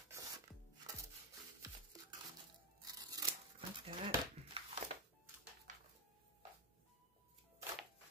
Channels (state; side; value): normal; both; correlation 0.04